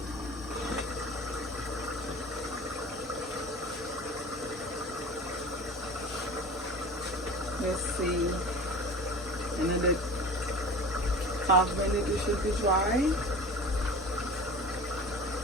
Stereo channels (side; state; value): both; normal; correlation 0.37